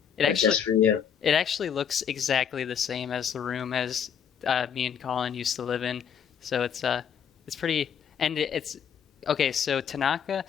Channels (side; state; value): right; quieter; 7.9 dB